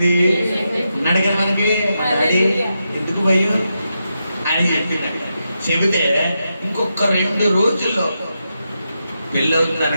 అన్నాడు కదా మనకి. డాడీ ఎందుకు భయం అని చెప్పింది. చెబితే ఇంకొక 2 రోజుల్లో పెళ్ళి అవుతుంది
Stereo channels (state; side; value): inverted; both; correlation -0.86